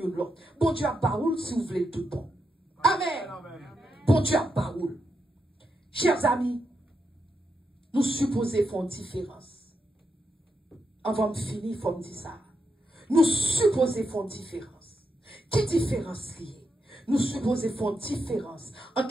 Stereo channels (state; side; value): normal; both; correlation 0.84